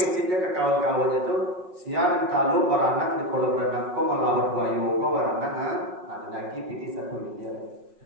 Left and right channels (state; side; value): late; left; 5.5 ms